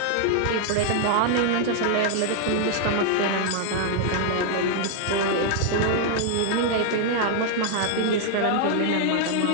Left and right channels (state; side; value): different; both; correlation 0.00